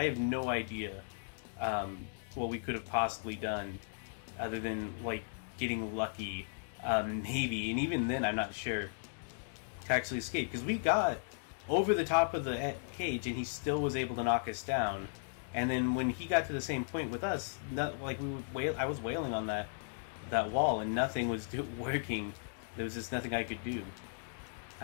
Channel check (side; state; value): right; silent; digital silence